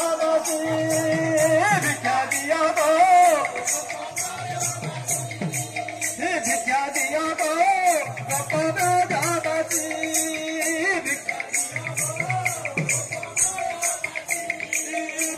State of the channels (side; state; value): both; identical; correlation 1.00